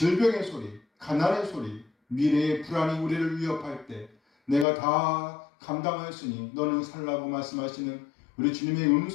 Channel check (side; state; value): right; drops out; at 4.7 s